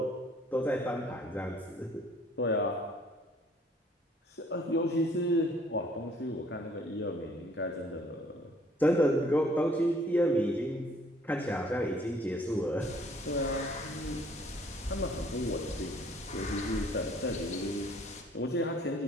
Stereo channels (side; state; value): both; normal; correlation 0.59